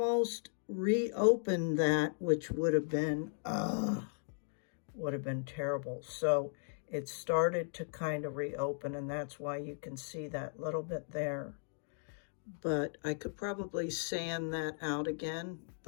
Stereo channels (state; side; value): silent; right; digital silence